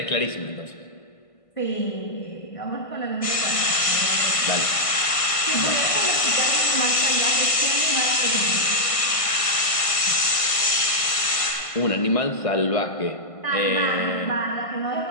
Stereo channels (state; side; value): late; right; 1.5 ms